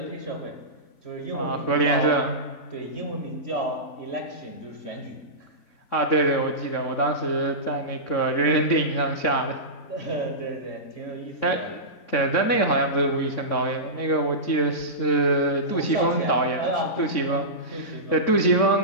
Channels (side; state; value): right; late; 3.6 ms